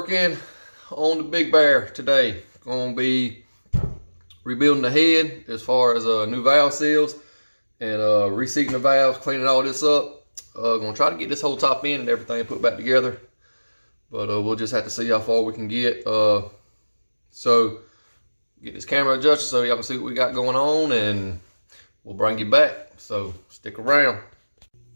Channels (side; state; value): both; inverted; correlation -1.00